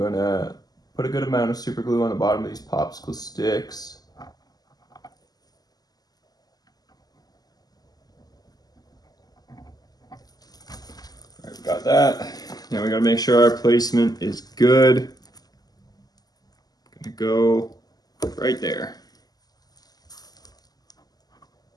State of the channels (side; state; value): right; late; 0.19 ms